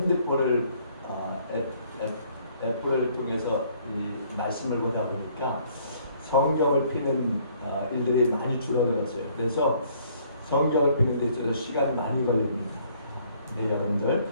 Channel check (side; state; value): both; inverted; correlation -0.62